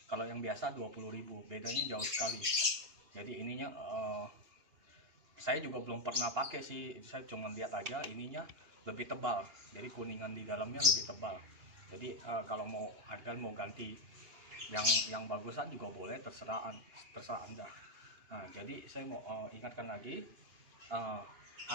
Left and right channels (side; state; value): left; late; 2.8 ms